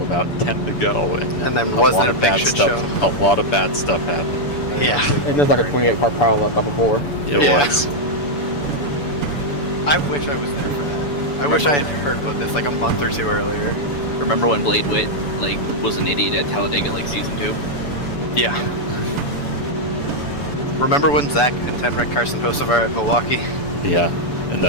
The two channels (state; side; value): late; right; 7.0 ms